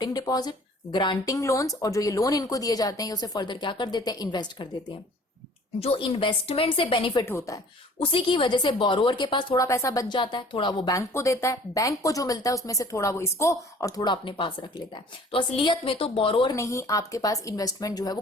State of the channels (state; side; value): normal; both; correlation 0.51